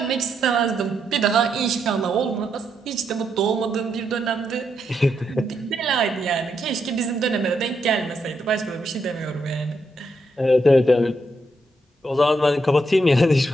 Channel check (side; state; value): both; normal; correlation 0.80